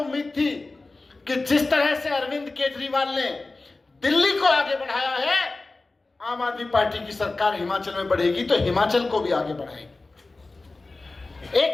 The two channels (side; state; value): right; quieter; 3.4 dB